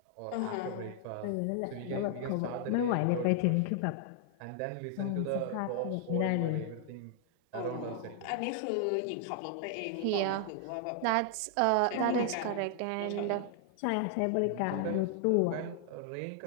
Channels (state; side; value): different; both; correlation 0.00